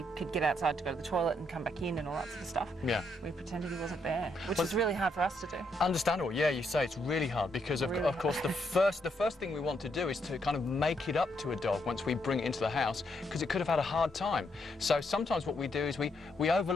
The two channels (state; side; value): normal; both; correlation 0.76